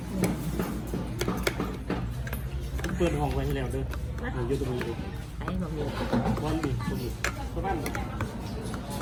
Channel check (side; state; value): both; identical; correlation 1.00